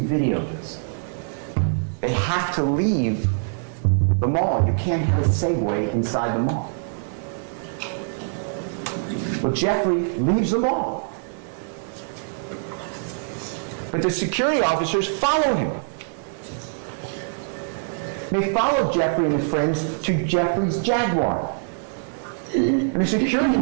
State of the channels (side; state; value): left; silent; 63 dB below the other